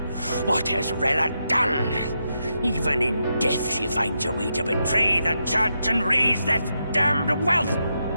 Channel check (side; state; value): both; inverted; correlation -0.84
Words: What has Rella done? Even in death she finds a way to betray the church and raise that damned wealth!